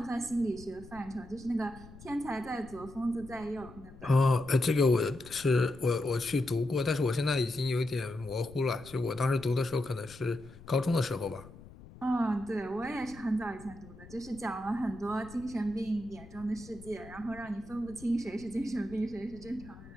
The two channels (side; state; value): left; noise; rumble, 18 dB below the sound